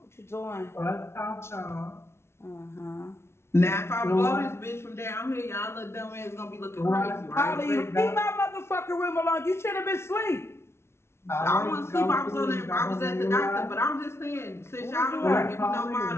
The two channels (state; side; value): late; right; 0.12 ms